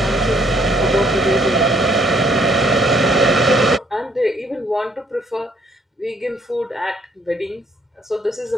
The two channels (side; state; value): both; normal; correlation 0.65